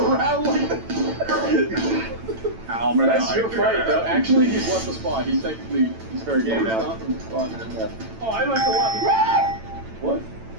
like that. Ow, That's your fight, though. Actually, he's left the spot. He's very game now. Oh, I like a lot. What?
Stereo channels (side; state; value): left; late; 9.0 ms